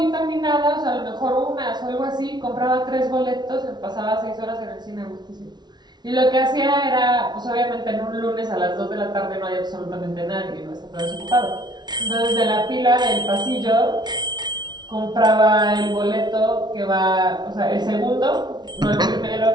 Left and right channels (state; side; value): late; left; 0.20 ms